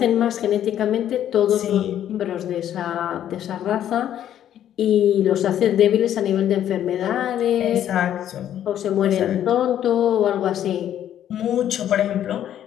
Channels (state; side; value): quieter; right; 10.9 dB